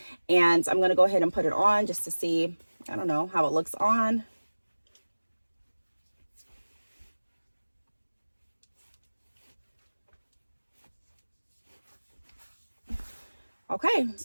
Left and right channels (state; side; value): inverted; both; correlation -1.00